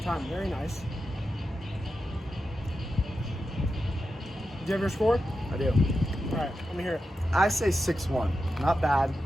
time. Very nice. Do you have your score? I do. All right, let me hear it. I say 6-1. Not bad.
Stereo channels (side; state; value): both; normal; correlation 0.90